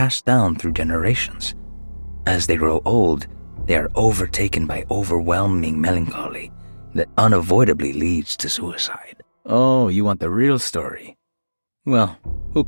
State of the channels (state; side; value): inverted; both; correlation -1.00